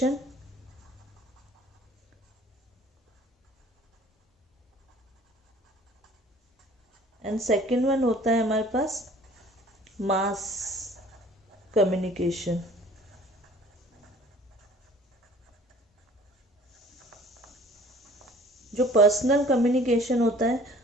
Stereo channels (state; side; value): normal; both; correlation 0.51